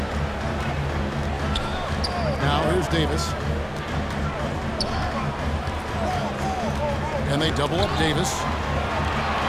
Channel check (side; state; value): both; identical; correlation 1.00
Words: Now here's Davis. And they double up Davis.